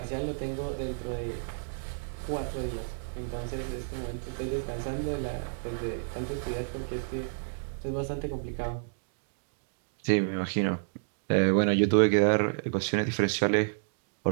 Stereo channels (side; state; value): left; silent; digital silence